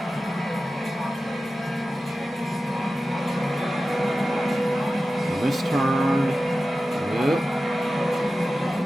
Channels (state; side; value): normal; both; correlation 0.94